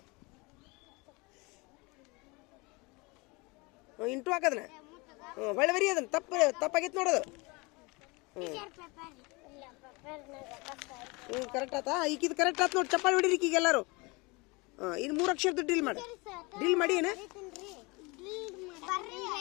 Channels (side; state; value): right; quieter; 26.6 dB